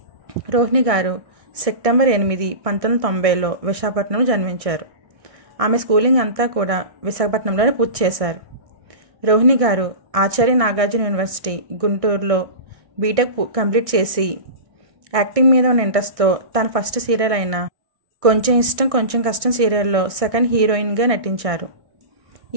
రోహిణి గారు సెప్టెంబర్ 8, 1990లో విశాఖపట్నంలో జన్మించారు. ఆమె స్కూలింగ్ అంతా కూడా విశాఖపట్నంలోనే పూర్తి చేశారు. రోహిణి గారు ఆచార్య నాగార్జున యూనివర్సిటీ గుంటూరులో బీటెక్ కంప్లీట్ చేసి యాక్టింగ్ మీద ఉన్న ఇంట్రెస్ట్తో తన ఫస్ట్ సీరియల్ అయిన కొంచెం ఇష్టం కొంచెం కష్టం సీరియల్లో సెకండ్ హీరోయిన్గా నటించారు.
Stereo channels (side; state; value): left; late; 1.6 ms